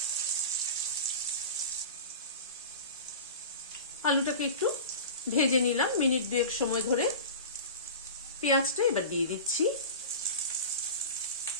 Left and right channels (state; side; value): inverted; both; correlation -0.33